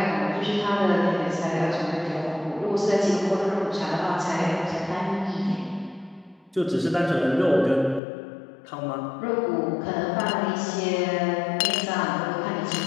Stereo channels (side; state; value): right; drops out; at 8.0 s